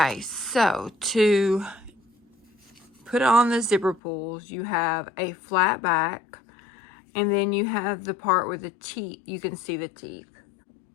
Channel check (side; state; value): right; drops out; at 4.0 s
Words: so to put on the zipper pulls, you have a flat back, and then you have the part with the teeth. You can see the teeth.